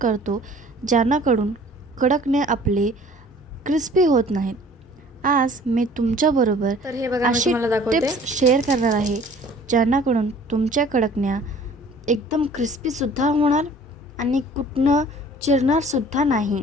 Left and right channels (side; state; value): both; normal; correlation 0.50